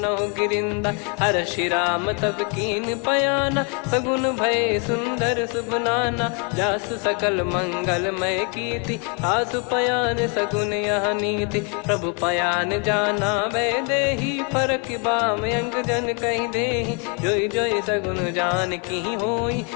गिरिंदा। हर्षि राम तब कीन पयाना सगुन भय सुंदर सुबनाना। जासु सकल मंगलमय कीर्ति आसु पयान सगुन यह नीति। प्रभु पयान जाना वै देहि फरक बाम अंग जन कहि देहि। जोई जोई सगुन जान की होई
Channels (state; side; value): quieter; right; 35.0 dB